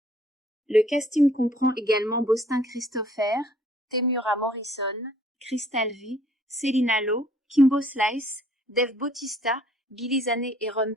Le casting comprend également Bostin Christopher, Temuera Morrison, Crystal V, Celina Lowe, Kimbo Slice, Dave Bautista, Billy Zane et Ron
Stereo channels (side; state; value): both; normal; correlation 0.60